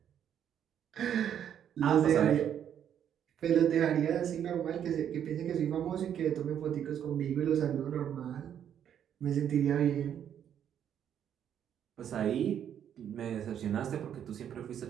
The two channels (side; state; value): left; quieter; 9.4 dB